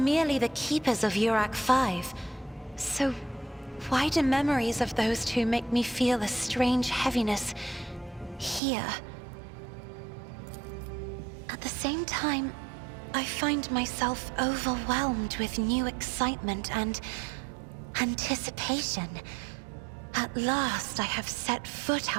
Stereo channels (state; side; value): drops out; left; at 8.6 s